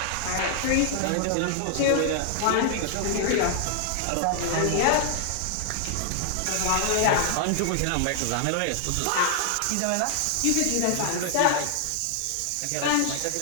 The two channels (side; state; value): both; different; correlation -0.01